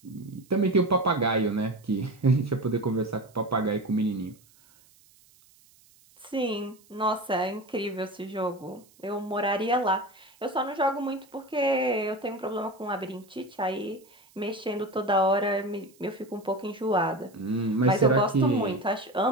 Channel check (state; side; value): noise; right; hiss, 29 dB below the sound